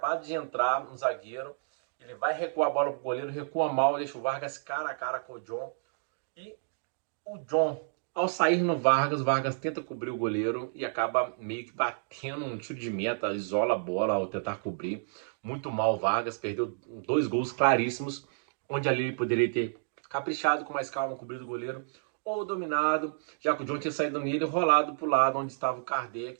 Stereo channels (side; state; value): left; silent; digital silence